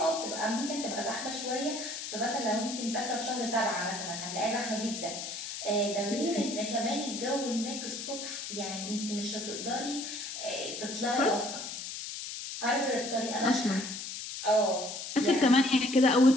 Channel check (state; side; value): noise; left; hiss, 7 dB below the sound